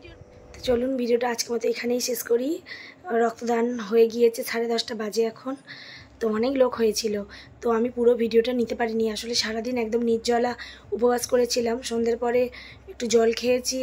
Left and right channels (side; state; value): both; identical; correlation 1.00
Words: তো চলুন ভিডিওটা আজকের মতো এখানেই শেষ করি। রক্তদান হয়ে গিয়েছে, 10:30 বাজে এখন। তো অনেক লোক হয়েছিল, তো আমি পুরো ভিডিওটা নিতে পারিনি। আসলে সারাদিন একদম নির্জলা উপবাস করেছিলাম। সন্ধ্যের পরে একটু জল খেয়েছি,